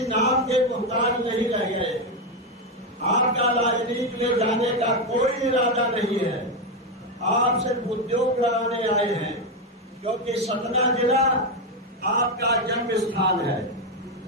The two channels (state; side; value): normal; both; correlation 0.08